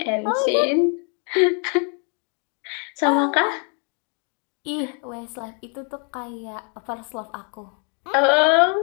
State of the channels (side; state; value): right; quieter; 39.9 dB